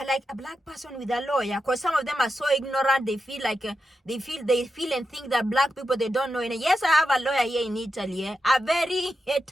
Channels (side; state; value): both; normal; correlation 0.88